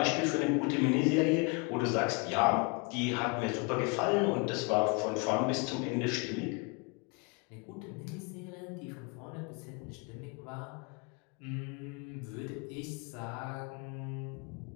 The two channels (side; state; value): right; quieter; 31.8 dB